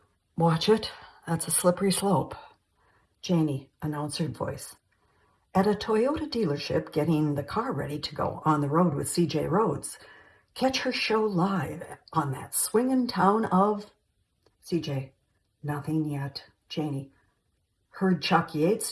watch it. That's a slippery slope. Janie, announcer voice. At a Toyota dealership, getting the car ready to go on the road with CJ Rhodes. Catch her show live on that swingin' town of... CJ, nothing yet. Janie, heard Chuck Yates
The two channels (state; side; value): identical; both; correlation 1.00